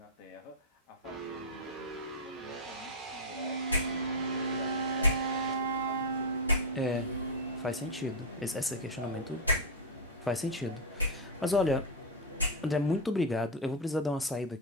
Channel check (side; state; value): both; normal; correlation 0.01